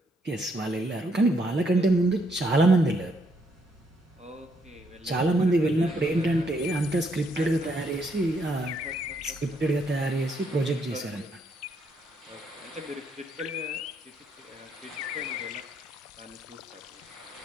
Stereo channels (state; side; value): normal; both; correlation 0.73